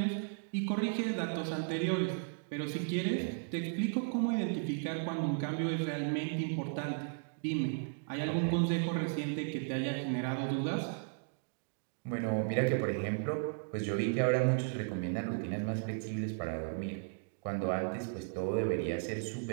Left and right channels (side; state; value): left; silent; digital silence